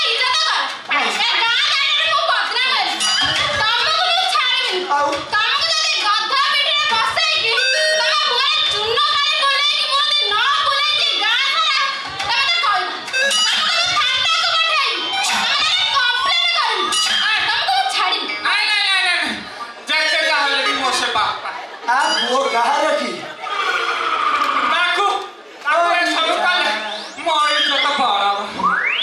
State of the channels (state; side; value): identical; both; correlation 1.00